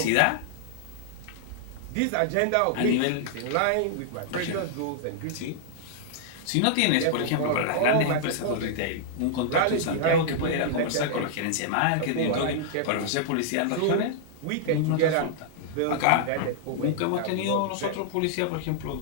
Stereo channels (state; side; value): different; both; correlation -0.01